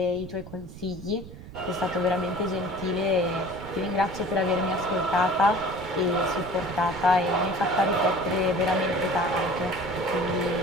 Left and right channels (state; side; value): noise; right; rumble, 15 dB below the sound